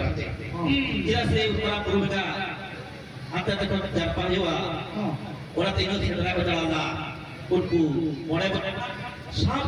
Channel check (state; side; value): identical; both; correlation 1.00